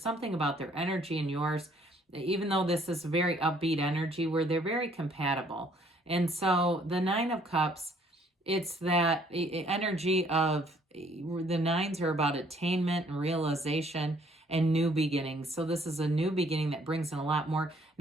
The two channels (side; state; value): both; normal; correlation 0.62